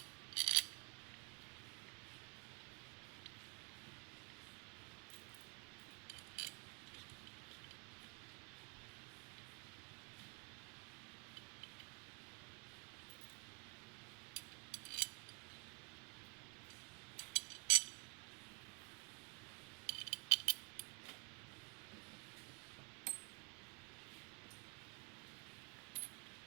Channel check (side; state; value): left; quieter; 35.7 dB